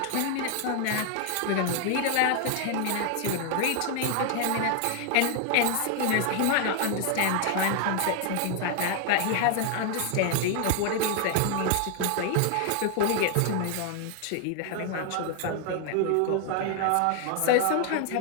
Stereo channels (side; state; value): both; different; correlation 0.00